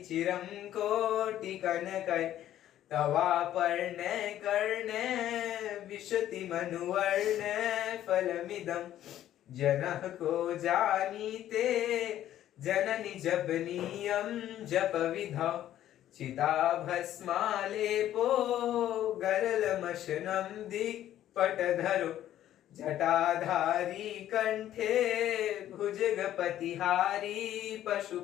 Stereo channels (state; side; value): quieter; right; 12.2 dB